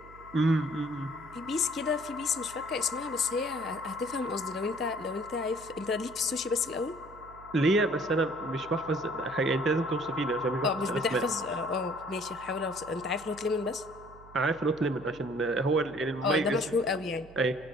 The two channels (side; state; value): right; noise; hum, 21 dB below the sound